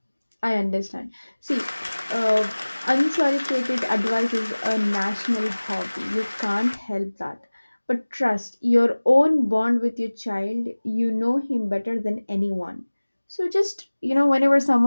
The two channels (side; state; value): both; inverted; correlation -1.00